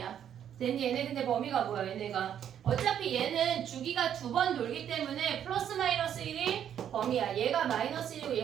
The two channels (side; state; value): left; quieter; 9.5 dB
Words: 됐니? 얘네 근데 범위가 뭐야 얘네가? 어차피 얘는 주기가 2번 돌기 때문에 플러스 마이너스 1이 범위야. 얘가 마이너스 1이고